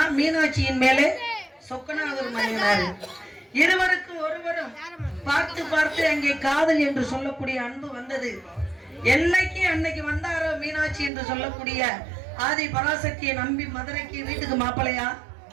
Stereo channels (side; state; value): left; drops out; at 11.1 s